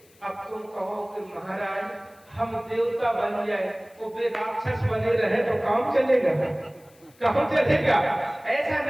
अब तुम कहो कि महाराज हम देवता बन जाए तो वे राक्षस बने रहे तो काम चलेगा? काम चलेगा? ऐसा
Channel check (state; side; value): noise; left; hiss, 29 dB below the sound